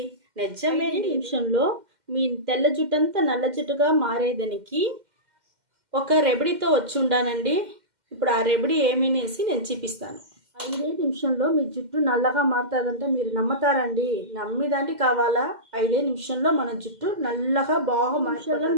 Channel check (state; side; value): late; left; 2.1 ms